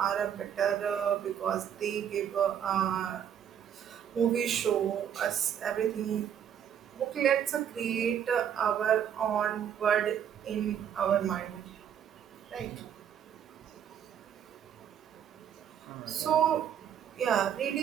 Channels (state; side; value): quieter; left; 9.0 dB